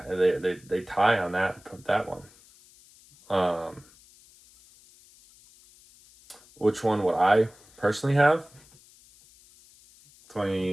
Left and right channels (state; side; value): noise; left; hiss, 27 dB below the sound